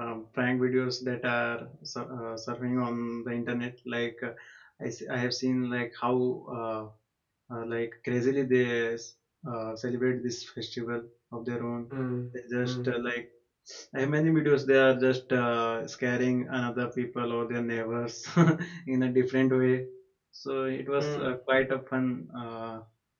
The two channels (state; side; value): identical; both; correlation 1.00